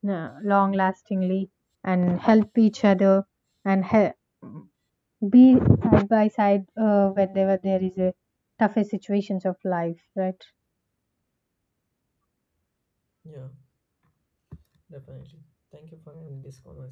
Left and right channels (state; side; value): identical; both; correlation 1.00